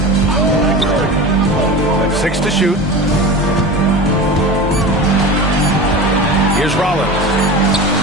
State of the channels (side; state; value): both; normal; correlation 0.31